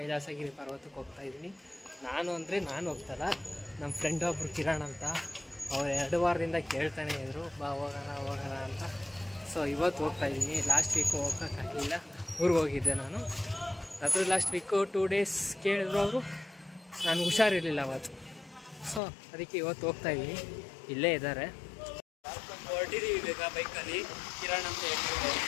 ಪರ್ವತಕ್ಕೆ ಹೋಗ್ತಾ ಇದ್ದೀನಿ. ನಾನು ಹೋಗ್ತಲ್ಲ, ನಮ್ಮ ಫ್ರೆಂಡ್ ಒಬ್ಬರು ಕಿರಣ್ ಅಂತ, ಅವ್ರು 2 ವಾರದಿಂದ ಕೇಳ್ತಾನೆ ಇದ್ರು ಬಾ ಹೋಗೋಣ ಅಂತ. ಸೊ ಇವತ್ತು ಹೋಗ್ತಾ ಇದ್ದೀನಿ. ಲಾಸ್ಟ್ ವೀಕು ಹೋಗೋಕ್ಕಾಗಲಿಲ್ಲ, ಊರಿಗೆ ಹೋಗಿದ್ದೆ ನಾನು. ಅದ್ರ ಲಾಸ್ಟ್ ವೀಕು 2 ಡೇಸ್ ಕೇಳಿದ್ರು ಅವರು, ನಾನು ಹುಷಾರಿರಲಿಲ್ಲ ಅವತ್ತು. ಸೊ ಅದಕ್ಕೆ ಇವತ್ತು ಹೋಗ್ತಾ ಇದ್ದೀನಿ. ಇಲ್ಲೇ ಇದ್ದಾರೆ, ಹೊರಟಿದ್ದೀವಿ ಈಗ ಬೈಕಲ್ಲಿ. ಕಿರಣ್ ಅಂತ ಹೇಳ್ತಿದ್ದಾರೆ,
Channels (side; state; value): right; drops out; at 19.0 s